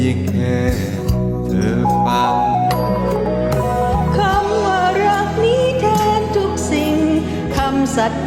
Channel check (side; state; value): both; identical; correlation 1.00